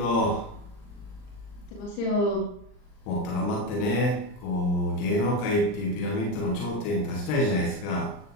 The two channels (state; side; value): late; right; 39 ms